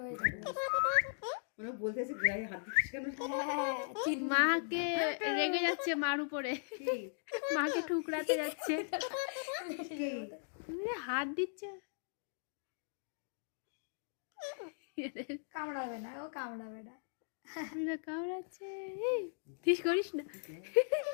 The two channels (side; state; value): right; silent; digital silence